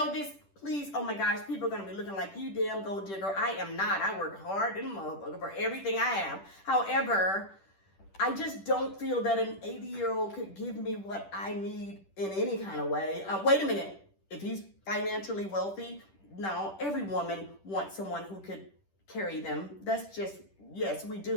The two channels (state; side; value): late; right; 10 ms